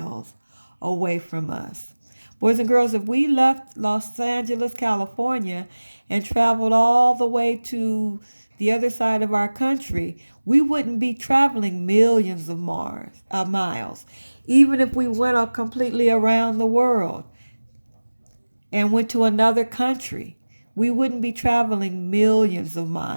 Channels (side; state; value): both; inverted; correlation -1.00